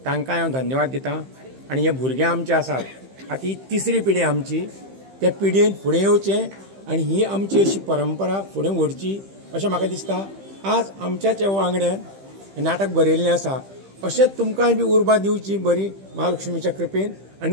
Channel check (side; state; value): left; late; 15 ms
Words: तांकांय हांव धन्यवाद दितां. आनी हे भुरगे आमचे आसात, आतां ही तिसरी पिढी आमची, त्या पिढयेन फुडें येवचें आनी ही आमची अशी परंपरा फुडें व्हरची अशें म्हाका दिसता. आज आमच्याच वांगड्यान नाटक बरयल्लें आसा, अशेंच तुमकांय बी उर्बा दिवची बरी महालक्ष्मीच्या कृपेन